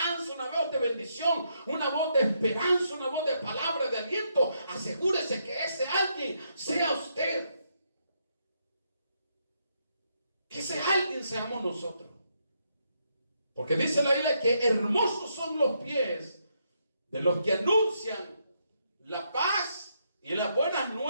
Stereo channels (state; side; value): inverted; both; correlation -0.77